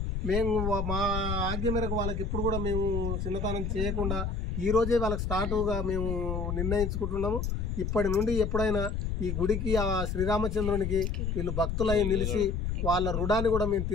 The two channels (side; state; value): left; noise; rumble, 2 dB below the sound